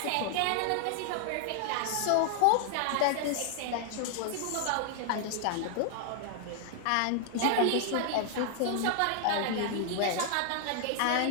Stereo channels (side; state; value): both; different; correlation 0.00